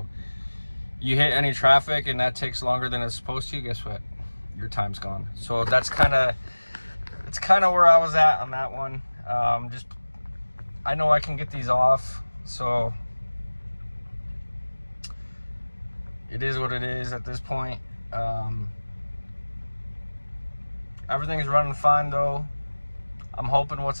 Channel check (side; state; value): both; inverted; correlation -1.00